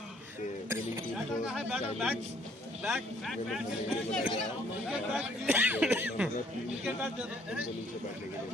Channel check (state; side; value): normal; both; correlation 0.63